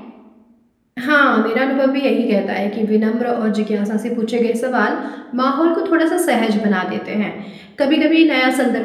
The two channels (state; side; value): identical; both; correlation 1.00